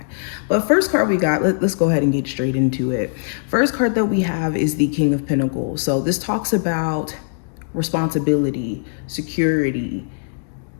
But first card we got, let's go ahead and get straight into it. First card that we have is the King of Pentacles. So this talks about responsibility, security,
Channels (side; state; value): right; silent; digital silence